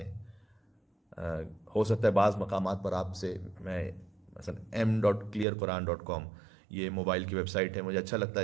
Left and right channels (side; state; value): left; drops out; at 5.5 s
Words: ہیں۔ ہو سکتا ہے بعض مقامات پر آپ سے، میں مثلا m.clearquran.com یہ موبائل کی ویب سائٹ ہے، مجھے اچھا لگتا